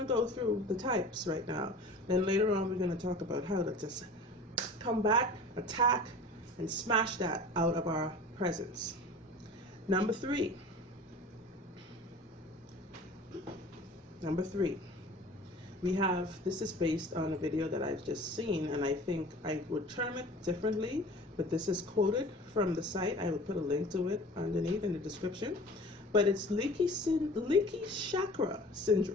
go through the types right now. Then later on, we're going to talk about how to just come back, attack, and smash that out of our presence. Number 3. Number 3. We have, this is based on a video that I've just seen, and I think I would term it differently, but this is quoted from the site. I will put a link to it underneath in the description. But it's leaky chakra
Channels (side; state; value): both; normal; correlation 0.42